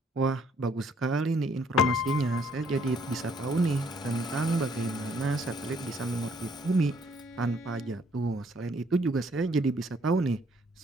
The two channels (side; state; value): both; normal; correlation 0.65